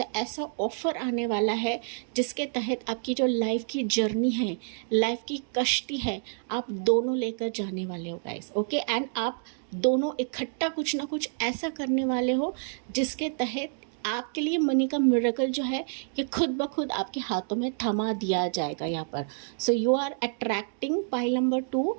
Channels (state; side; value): silent; left; digital silence